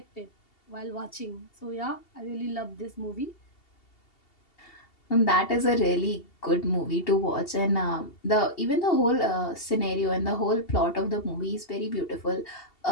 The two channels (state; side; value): late; right; 2.7 ms